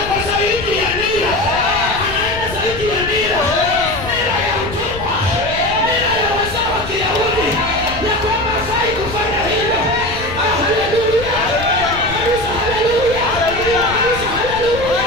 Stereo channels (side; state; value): left; noise; rumble, 11 dB below the sound